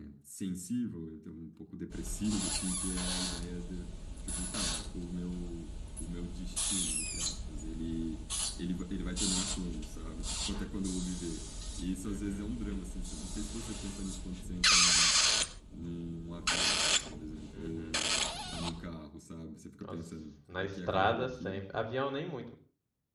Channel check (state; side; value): identical; both; correlation 1.00